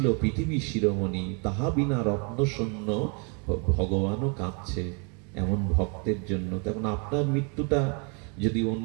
পৃথিবী শিরোমণি, তাহা বিনা রত্ন শূন্য, ভগবানও কাঁদছে এমন ভক্তের জন্য। তেমন আপনার মৃত্যুটা যদি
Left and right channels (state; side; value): quieter; left; 35.4 dB